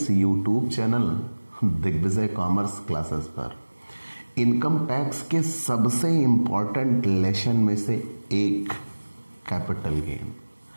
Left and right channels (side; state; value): both; inverted; correlation -1.00